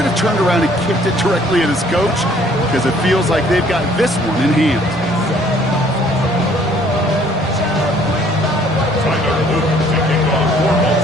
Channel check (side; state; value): both; normal; correlation 0.59